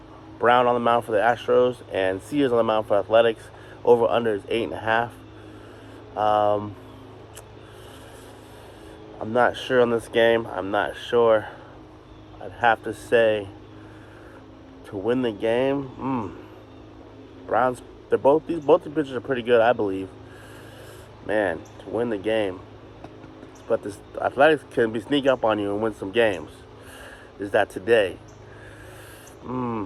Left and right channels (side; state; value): both; identical; correlation 1.00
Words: Brown on the mound for the Astros and Sears on the mound for Athletics. Over/under is 8.5. I'm not sure on this game. I'm not sure. I'd have to say to win the game. Browns. Both the pitchers are pretty good, I believe. Man, to win the game. But this Athletics can sneak up on you and win some games. Is that today?